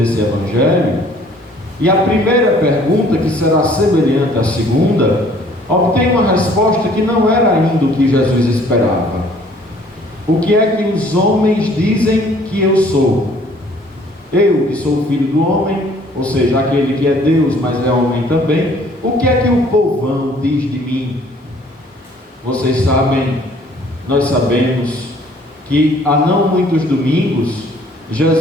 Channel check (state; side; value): normal; both; correlation 0.57